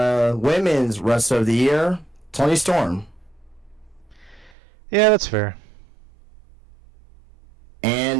Wrestler of the Year, Toni Storm. Yeah, that's fair.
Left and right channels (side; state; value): left; drops out; at 4.5 s